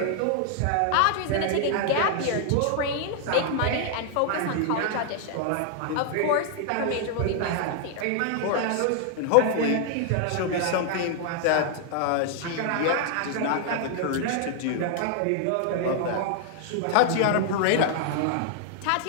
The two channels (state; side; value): different; both; correlation 0.00